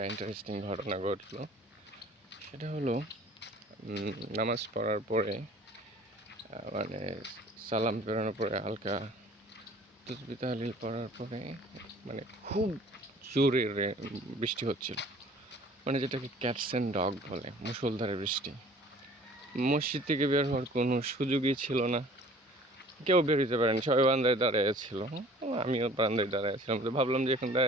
ইন্টারেস্টিং ঘটনা ঘটলো। সেটা হলো নামাজ পড়ার পরে মানে সালাম ফেরানোর পরে হালকা তাসবিহ তাহলিল পড়ার পরে মানে খুব জোরে বৃষ্টি হচ্ছিল, মানে যেটাকে ক্যাটস অ্যান্ড ডগ বলে, মুষলধারে বৃষ্টি। মসজিদ থেকে বের হওয়ার কোনো সুযোগই ছিল না, কেউ বের হতে পারেনি, সবাই বারান্দায় দাঁড়িয়ে ছিল। আমিও বারান্দায় দাঁড়িয়ে ছিলাম, তো ভাবলাম যে এখন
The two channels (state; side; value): normal; both; correlation 0.50